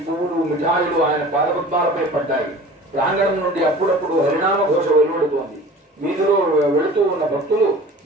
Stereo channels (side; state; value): both; normal; correlation 0.42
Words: పువ్వులు, మిఠాయిలు ఆయన పాదపద్మాలపై పడ్డాయి. ప్రాంగణం నుండి అప్పుడప్పుడు హరినామ ఘోష వెలువడుతోంది. వీధిలో వెళుతూ ఉన్న భక్తులు